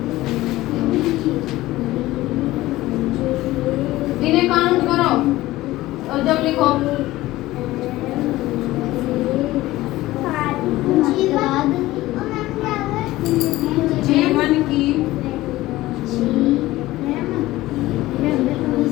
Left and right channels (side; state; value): right; quieter; 17.2 dB